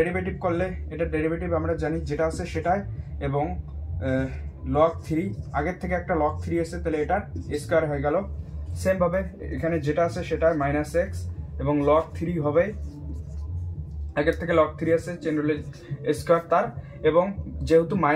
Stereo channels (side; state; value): both; identical; correlation 1.00